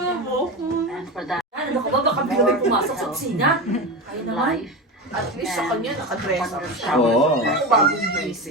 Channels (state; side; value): normal; both; correlation 0.22